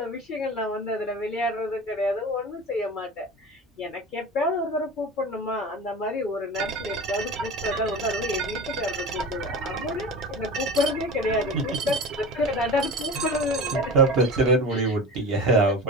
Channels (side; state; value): both; normal; correlation 0.33